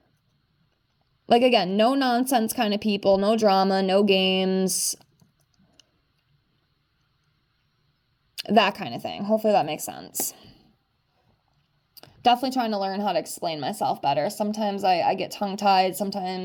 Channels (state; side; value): identical; both; correlation 1.00